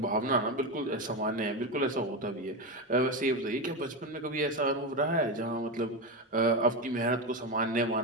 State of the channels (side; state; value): both; normal; correlation 0.14